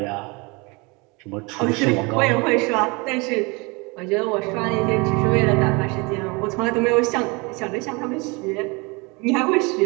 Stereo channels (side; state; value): left; quieter; 27.9 dB